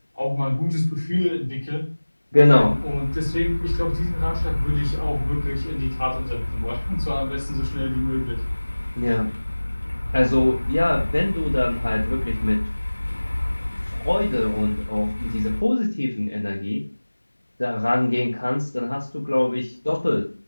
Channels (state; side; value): inverted; both; correlation -1.00